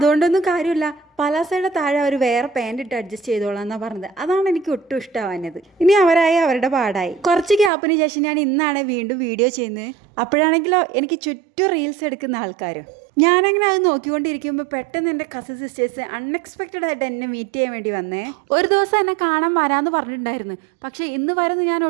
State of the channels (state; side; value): drops out; left; at 7.7 s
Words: കാര്യമില്ല. പലാസയുടെ താഴെ അവർ വേറെ പാൻറ് ഇട്ട് അഡ്ജസ്റ്റ് ചെയ്തോളാം എന്നാ പറഞ്ഞത്. അതാണ് എനിക്ക് ഒട്ടും ഇഷ്ടമാവുന്നത്. ഇനി അവരായി അവരുടെ പാടായി. കുറച്ച് ഗ്യാപ്പിന് ശേഷം ഞാൻ ഇന്നാണ് വീണ്ടും വീഡിയോ ചെയ്യുന്നത്. അപ്പോഴാണെങ്കിലോ എനിക്ക് ചുറ്റും റീൽസ് എടുക്കുന്ന ആൾക്കാരും. ഞാനങ്ങനെ അത് നോക്കിക്കൊണ്ടിരിക്കുമ്പോൾ പെട്ടെന്ന് എൻ്റെ കസിൻ സിസ്റ്റേഴ്സ് അൺഎക്സ്പെക്റ്റഡ് ആയിട്ട് എന്നെ മീറ്റ് ചെയ്യാൻ വേണ്ടി വന്നേ. ഒരു ദിവസം എന്നെ കാണാൻ വരാമെന്ന് പറഞ്ഞിട്ടുണ്ടായിരുന്നു. പക്ഷേ ഇന്ന് വരുന്ന ഞാൻ